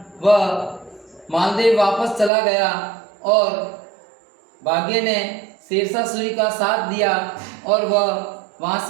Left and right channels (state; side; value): drops out; left; at 2.3 s